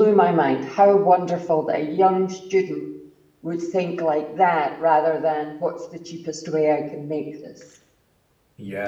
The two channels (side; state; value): both; identical; correlation 1.00